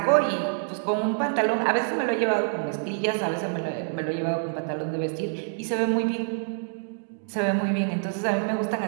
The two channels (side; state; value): left; silent; digital silence